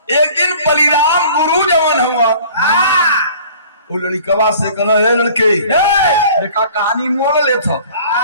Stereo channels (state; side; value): inverted; both; correlation -0.49